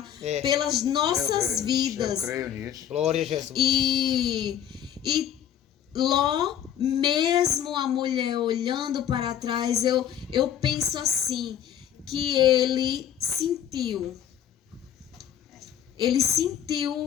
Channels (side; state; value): right; quieter; 10.0 dB